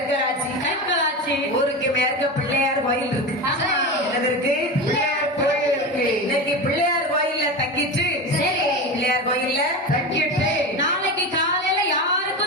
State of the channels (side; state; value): both; normal; correlation 0.23